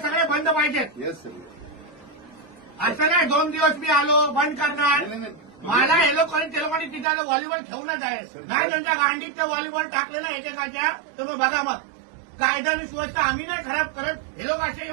बंद पाहिजेत। येस सर, असं नाही 2 दिवस मी आलो बंद करणार। मला हे लोकांनी ते लोकांनी तिथे व्हॉलीबॉल ठेवूनच आहे नाही, त्यांच्या गांडीत ते व्हॉलीबॉल टाकलेलं एकेकाच्या। तुम्ही बघा मग, कायदा आणि सुव्यवस्था आम्ही नाही खराब करत, हे लोक असे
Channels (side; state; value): left; drops out; at 7.1 s